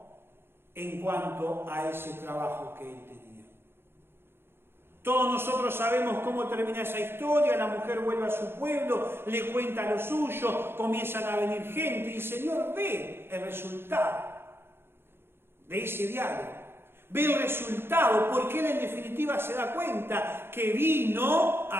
en cuanto a ese trabajo que él tenía. Todos nosotros sabemos cómo termina esa historia. La mujer vuelve a su pueblo, le cuenta lo suyo, comienzan a venir gente y el Señor ve el resultado de ese diálogo. Ve el resultado, porque él en definitiva se da cuenta que vino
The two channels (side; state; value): left; late; 0.11 ms